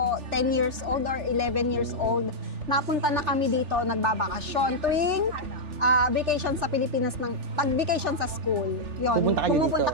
10 years old or 11 years old. Napunta na kami dito, nagbabakasyon. Tuwing vacation sa Pilipinas, pag-vacation sa school, yun, Pupunta kayo pumupunta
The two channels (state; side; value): late; left; 3.4 ms